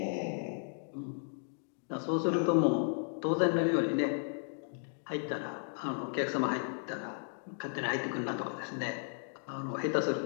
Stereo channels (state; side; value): silent; right; digital silence